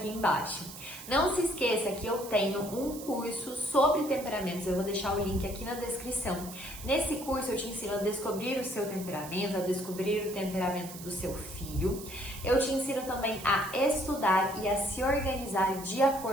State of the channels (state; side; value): noise; right; hiss, 13 dB below the sound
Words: embaixo. Não se esqueça que eu tenho um curso sobre temperamentos, eu vou deixar o link aqui na descrição. Nesse curso eu te ensino a descobrir o seu temperamento, a descobrir o temperamento do seu filho. Eu te ensino também a estudar e a se organizar de